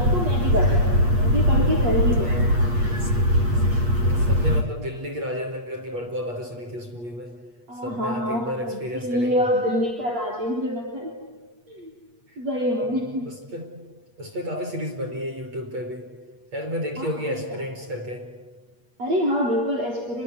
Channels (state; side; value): late; left; 8.4 ms